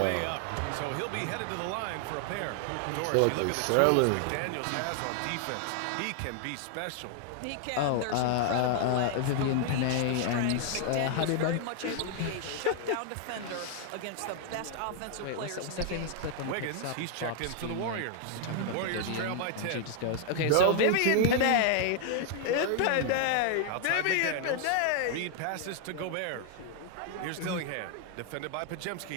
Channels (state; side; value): different; both; correlation 0.00